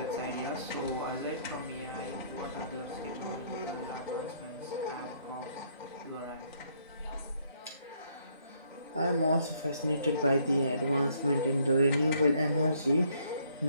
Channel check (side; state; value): both; inverted; correlation -0.67